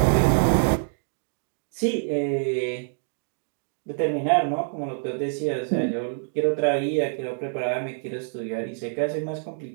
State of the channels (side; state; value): left; silent; digital silence